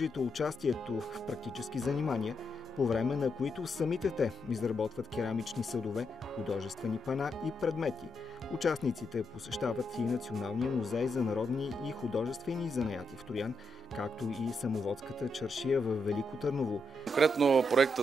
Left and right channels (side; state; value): both; normal; correlation 0.82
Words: участието в практически занимания, по време на които самите те изработват керамични съдове, художествени пана и предмети. Участниците посещават и Националния музей за народни и художествени занаяти в Троян, както и самоводската чаршия в Велико Търново. Конкретно